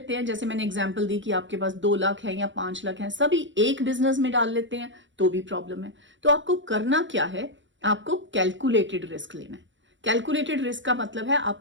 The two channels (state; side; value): late; left; 0.54 ms